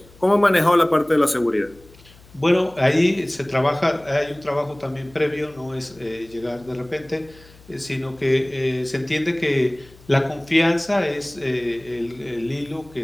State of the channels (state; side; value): noise; left; hum, 25 dB below the sound